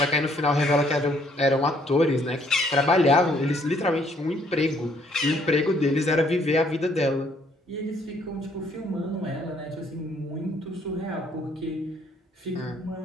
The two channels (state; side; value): normal; both; correlation 0.65